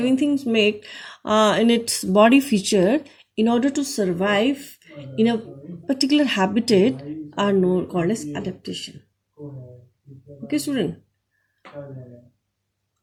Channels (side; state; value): both; identical; correlation 1.00